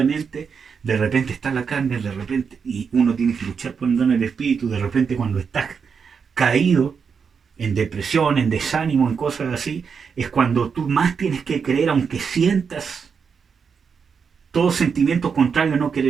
de repente está la carne, de repente, y uno tiene que luchar por andar en el espíritu, de repente cuando estás caído, en depresión, en desánimo, en cosas así, es cuando tú más tienes que creer, aunque sientas todo sentimiento contrario, no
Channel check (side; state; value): left; quieter; 6.1 dB